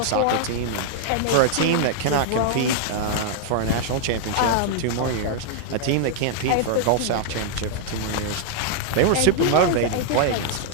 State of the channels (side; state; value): both; different; correlation 0.00